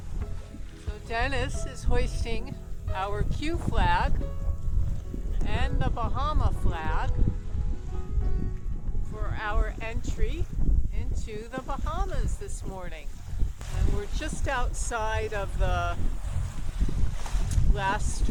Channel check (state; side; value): identical; both; correlation 1.00